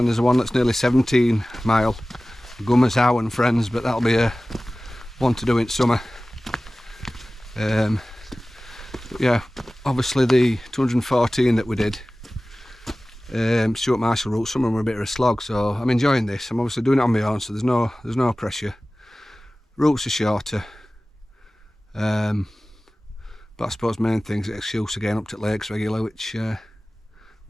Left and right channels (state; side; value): normal; both; correlation 0.97